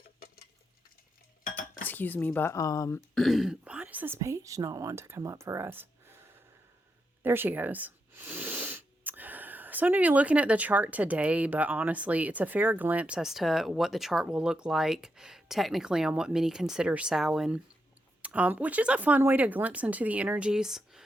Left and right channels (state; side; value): normal; both; correlation 0.84